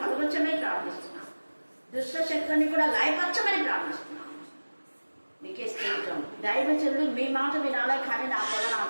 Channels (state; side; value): inverted; both; correlation -1.00